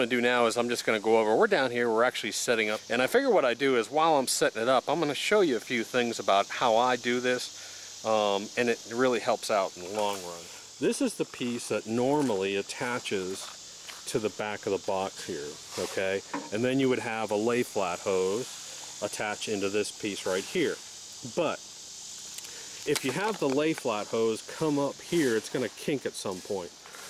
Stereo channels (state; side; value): identical; both; correlation 1.00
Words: to do now is I'm just going to go over, we're down here, we're actually setting up, and I figure what I do is while I'm setting it up, I'm going to show you a few things about how I do this, and it really helps out in the long run. This is the piece that normally attaches to the back of the box here, okay? And then you would have a lay flat hose attached into this piece right here. But if you have the lay flat hose come up here, it's going to kink at some point.